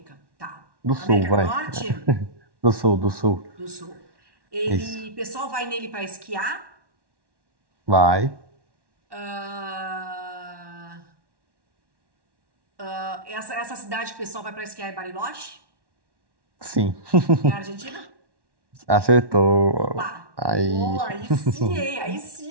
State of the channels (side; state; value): left; late; 1.1 ms